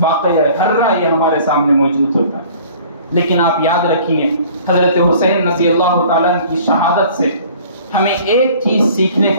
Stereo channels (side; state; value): both; inverted; correlation -0.50